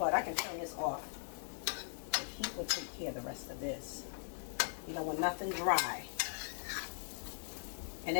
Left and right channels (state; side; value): silent; right; 51 dB below the other